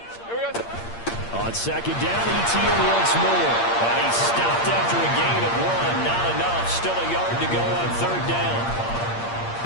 On 2nd down, Etienne once more. And he stopped after a gain of 1. Not enough. Still a yard to go on 3rd down.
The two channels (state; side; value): late; right; 8.6 ms